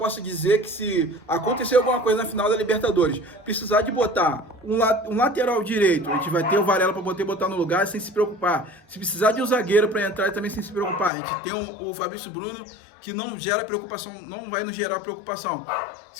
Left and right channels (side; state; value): right; drops out; at 11.1 s